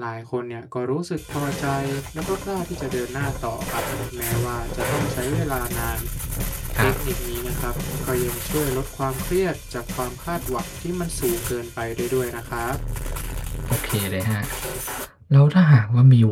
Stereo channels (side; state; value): both; identical; correlation 1.00